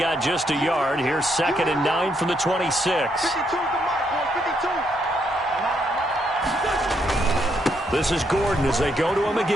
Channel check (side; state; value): both; normal; correlation 0.75